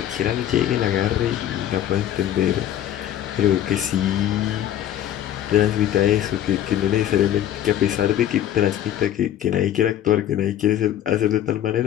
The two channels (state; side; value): quieter; right; 11.5 dB